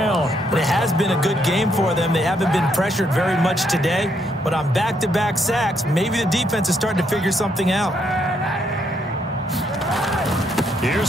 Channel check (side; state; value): both; normal; correlation 0.74